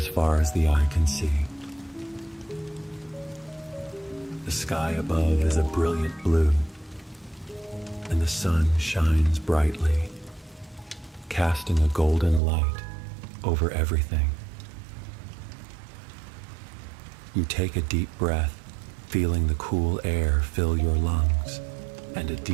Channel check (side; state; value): left; drops out; at 12.4 s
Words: far as the eye can see. The sky above is a brilliant blue, and the sun shines brightly, casting a golden light over everything. You take a deep breath, feeling the cool air fill your lungs, and a